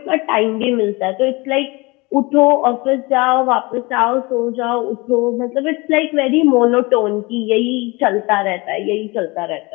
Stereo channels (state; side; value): quieter; right; 24.9 dB